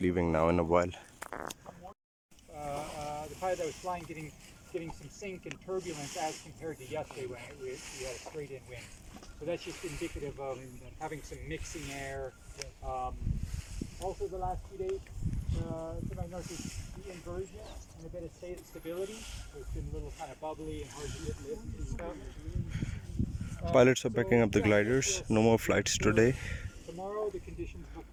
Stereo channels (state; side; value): identical; both; correlation 1.00